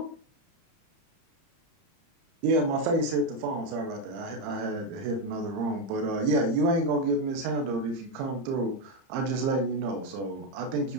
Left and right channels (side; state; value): left; late; 30 ms